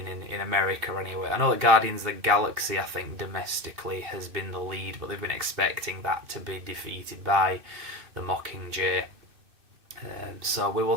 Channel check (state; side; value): late; left; 2.6 ms